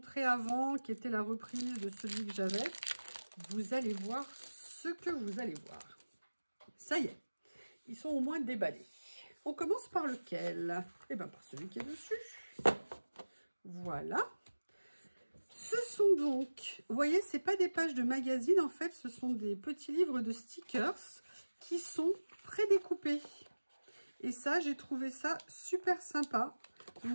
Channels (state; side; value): inverted; both; correlation -1.00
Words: avant, qui était la reprise de celui que j'avais. Vous allez voir ce que vous allez voir. Ça y est, ils sont au moins déballés. On commence par lequel? Eh bien, par celui qui est dessus. Voilà. Ce sont donc, vous voyez, c'est pas des pages de magazine, en fait, ce sont des petits livres de stickers qui sont prédécoupés. Et ça, j'ai trouvé ça super sympa.